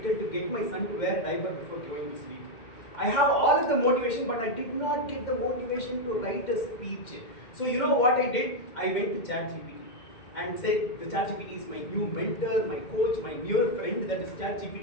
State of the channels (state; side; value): late; right; 2.1 ms